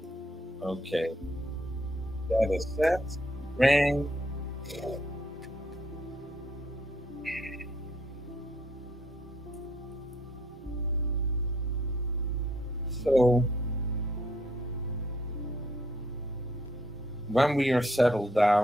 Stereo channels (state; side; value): normal; both; correlation 0.69